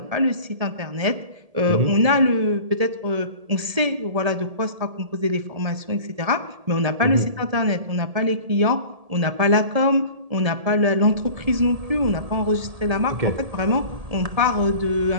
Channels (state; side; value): late; left; 1.7 ms